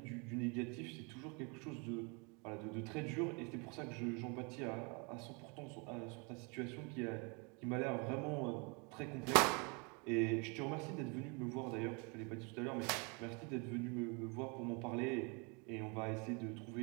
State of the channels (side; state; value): left; quieter; 32.2 dB